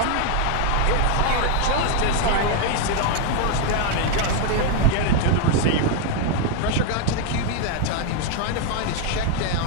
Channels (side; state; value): both; different; correlation 0.00